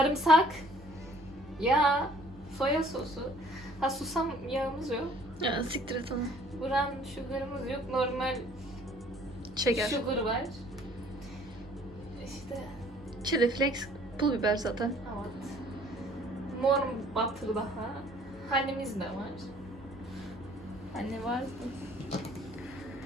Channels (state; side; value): normal; both; correlation 0.57